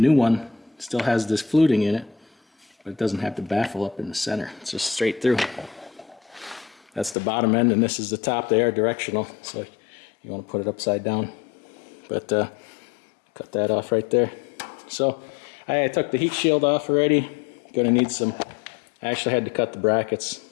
one still has this fluting in it, but it doesn't have the baffle up in the center. It's just straight through. That's the bottom end, and this is the top. They are directional, so you want to put it upside down, but cut that off right there. So I took the heat shield off already. Gonna need some, I actually had to cut the brackets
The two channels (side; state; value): right; drops out; at 7.2 s